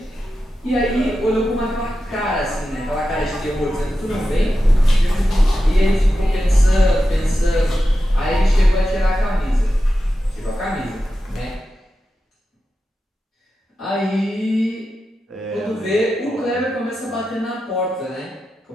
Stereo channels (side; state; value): both; normal; correlation 0.91